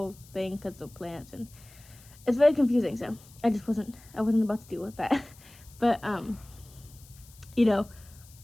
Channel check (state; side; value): noise; left; hiss, 24 dB below the sound